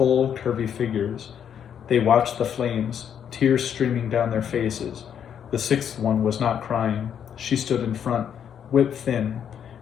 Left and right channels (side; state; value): right; quieter; 8.6 dB